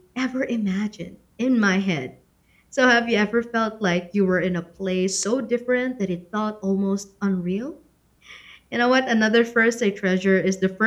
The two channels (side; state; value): both; identical; correlation 1.00